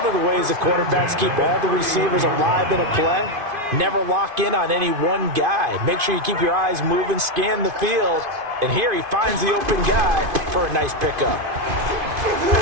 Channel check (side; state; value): left; late; 2.5 ms